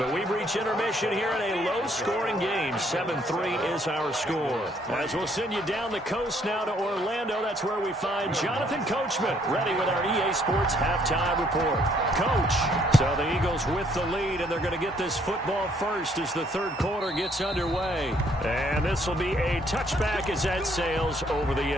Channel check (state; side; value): normal; both; correlation 0.66